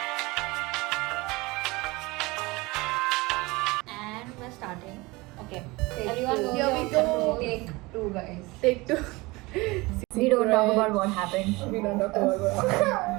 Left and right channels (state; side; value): quieter; left; 22.8 dB